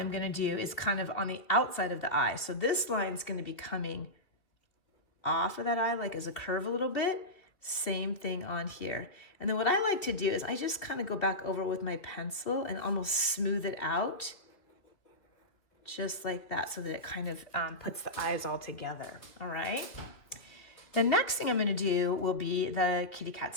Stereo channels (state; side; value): late; right; 2.6 ms